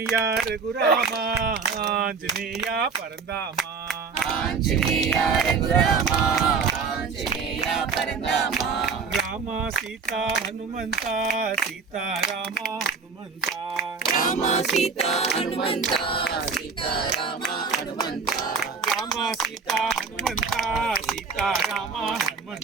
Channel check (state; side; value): quieter; left; 5.2 dB